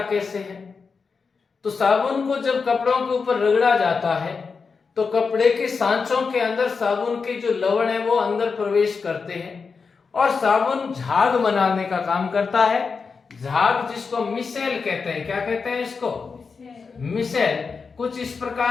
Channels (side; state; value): right; quieter; 5.1 dB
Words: कैसे है? तो साबुन को जब कपड़ों के ऊपर रगड़ा जाता है तो कपड़े के सांचों के अंदर साबुन के जो लवण है वो अंदर प्रवेश करते हैं, और साबुन झाग बनाने का काम करता है। झाग जिसको मिसेल कहते हैं। क्या कहते हैं इसको? मिसेल। कुछ इस